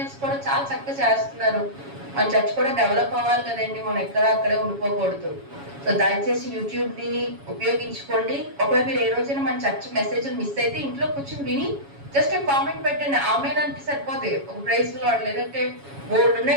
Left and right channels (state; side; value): late; left; 7.2 ms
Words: కూడా చాలా చక్కగా చేస్తున్నారు. మన చర్చ్ కూడా డెవలప్ అవ్వాలి కదండి, మనం ఎక్కడ అక్కడే ఉండిపోకూడదు. సో దయచేసి యూట్యూబ్ ని ఉపయోగించుకోండి. ఒకవేళ మీరు ఏ రోజైనా మన చర్చ్ మెసేజ్ మిస్ అయితే ఇంట్లో కూర్చొని విని జస్ట్ కామెంట్ పెట్టండి. ఆమెనంటే సరిపోతే ఒక ప్రైజ్ లో లేదంటే బోర్డు